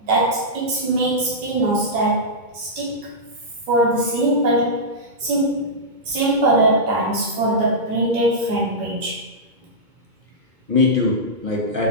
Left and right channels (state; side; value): late; left; 2.2 ms